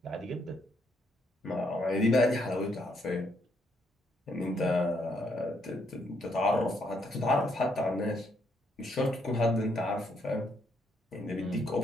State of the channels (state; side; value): normal; both; correlation 0.74